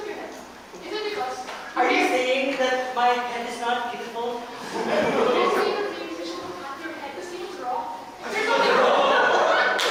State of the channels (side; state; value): both; identical; correlation 1.00